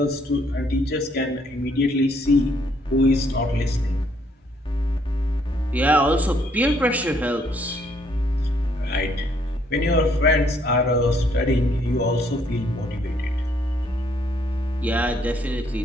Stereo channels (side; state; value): both; normal; correlation 0.68